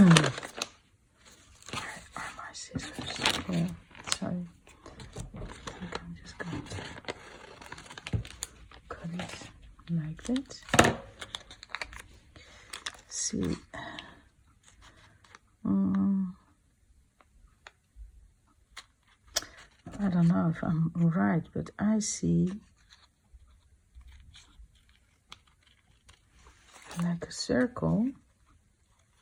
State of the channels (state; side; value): identical; both; correlation 1.00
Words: are my scissors? Oh, sorry. I think I'm just going to cut it like that. See. I don't know if I'm right, but I see like a circle.